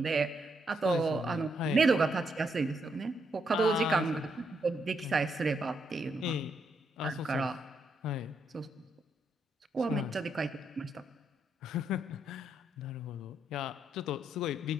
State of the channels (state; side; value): normal; both; correlation 0.77